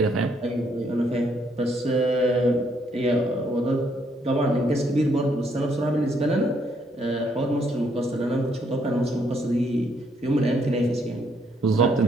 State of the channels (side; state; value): both; normal; correlation 0.71